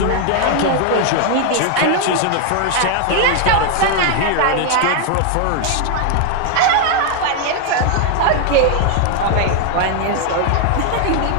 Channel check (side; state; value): both; different; correlation 0.00